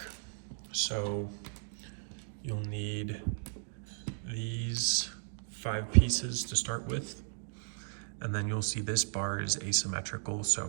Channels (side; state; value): left; silent; digital silence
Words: So you'll need these 5 pieces to start with, and then you'll see this bar is asymmetrical,